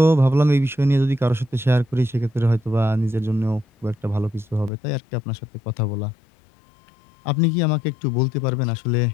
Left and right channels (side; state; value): right; drops out; at 4.7 s